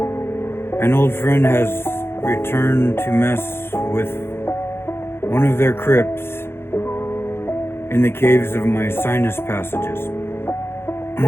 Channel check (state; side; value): late; right; 0.11 ms